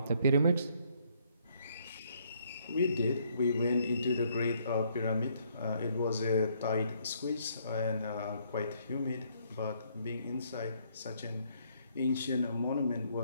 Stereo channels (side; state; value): both; inverted; correlation -0.69